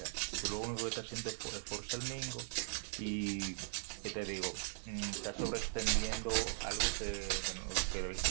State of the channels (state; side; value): silent; left; digital silence